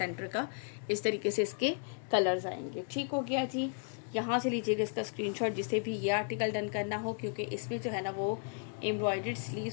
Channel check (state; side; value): silent; right; 55 dB below the other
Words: का इस तरीके से इसके कलर्स आएंगे, ठीक हो गया जी। यहाँ से लीजिएगा इसका स्क्रीनशॉट जिसे भी ये आर्टिकल डन करना हो, क्योंकि इसमें जो है ना वो एम्ब्रॉयडर्ड